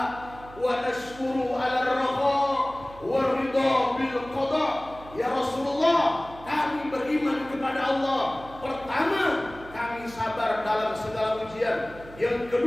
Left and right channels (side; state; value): right; noise; hum, 18 dB below the sound